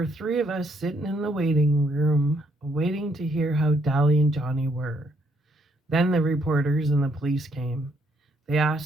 three of us sitting in the waiting room, waiting to hear how Dolly and Johnny were. Then the reporters and the police came. They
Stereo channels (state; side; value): normal; both; correlation 0.71